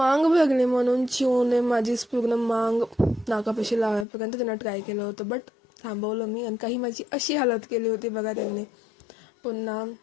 भरली म्हणून चिवने माझीच पूर्ण मांग नाकापाशी लावायपर्यंत त्यांना ट्राय केलं होतं, बट थांबवलं मी. आणि काही माझी अशी हालत केली होती बघा त्यांनी. पुन्हा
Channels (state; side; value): drops out; right; at 4.0 s